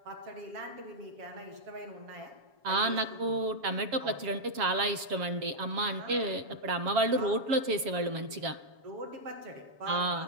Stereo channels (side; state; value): left; late; 7.2 ms